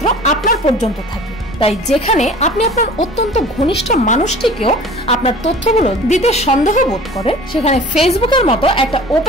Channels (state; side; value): normal; both; correlation 0.43